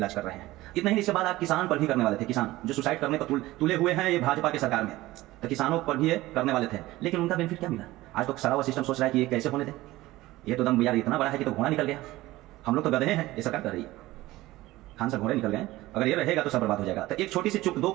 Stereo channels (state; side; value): quieter; left; 17.8 dB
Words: कर रहे हैं। इतना ही, इसके बाद आप किसान पर भी करने वाले थे। किसान जो सुसाइड करने पर तुले हुए हैं ये भाजपा की सरकार में, तो किसानों पर भी ये करने वाले थे, लेकिन उनका बेनिफिट क्या मिला। आज तो सारा वो सिस्टम सोच रहा है कि ये कैसे होने दे, ये तो दम यार इतना बड़ा है कि तो घोड़ा निकल गया। हम लोग तो गधे हैं, ये सरकार कर रही है। खान सर घोड़े निकल गए, अगर ये रहेगा तो सब बर्बाद हो जाएगा। तो एक छोटी सी चुप, दो